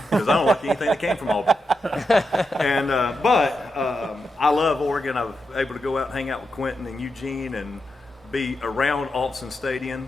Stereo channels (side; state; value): both; normal; correlation 0.86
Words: because I don't like anything that came from Auburn. And but I love Oregon. I was able to go out and hang out with Quentin and Eugene and be around Autzen